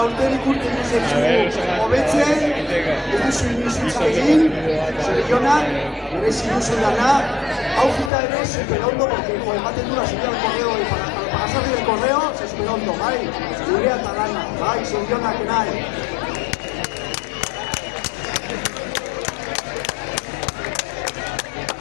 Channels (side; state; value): right; drops out; at 8.1 s